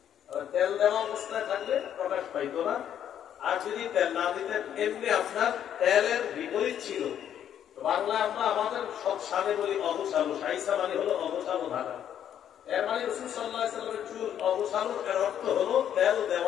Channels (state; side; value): quieter; right; 9.8 dB